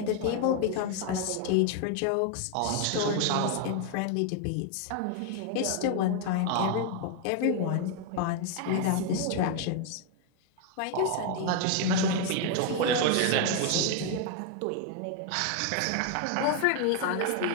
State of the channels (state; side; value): different; both; correlation 0.01